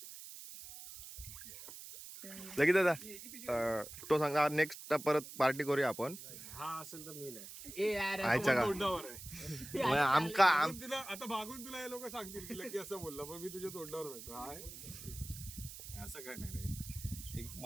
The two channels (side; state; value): right; noise; hiss, 12 dB below the sound